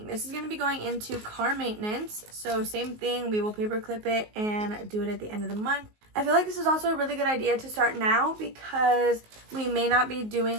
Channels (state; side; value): late; left; 19 ms